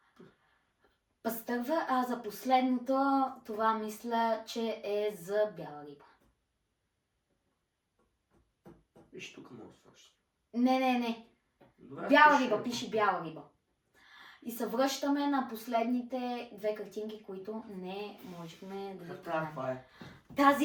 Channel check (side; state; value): both; identical; correlation 1.00